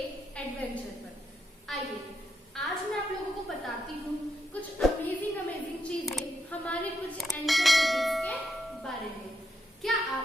एडवेंचर पर। आइए आज मैं आप लोगों को बताती हूँ कुछ अमेजिंग चीजें हमारे कुछ एंशिएंट सिटीज के बारे में। क्या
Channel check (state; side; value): normal; both; correlation 0.81